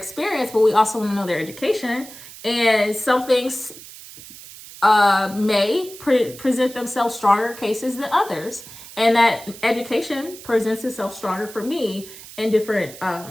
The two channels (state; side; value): noise; right; hiss, 16 dB below the sound